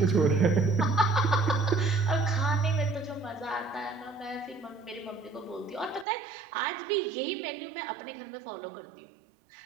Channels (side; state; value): left; drops out; at 6.1 s